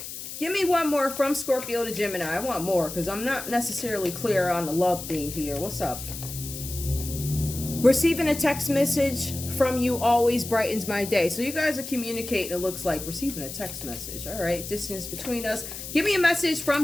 Give me one more from Scorpio to Gemini. I want more because I'm not necessarily clear on the love thing here. What's up? Receiving a text message from you always brightens my day. So you guys are communicating, it looks like. Receiving a text message. All right. Distance between us. Give me a message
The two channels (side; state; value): left; noise; hiss, 9 dB below the sound